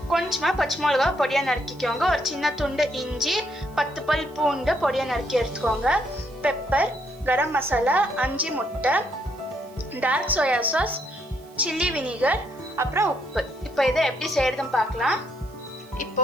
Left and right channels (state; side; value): noise; right; hiss, 27 dB below the sound